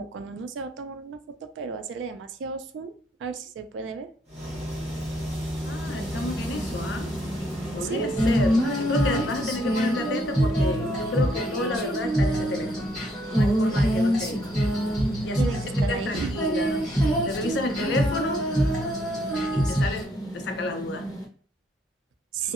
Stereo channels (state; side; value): normal; both; correlation 0.70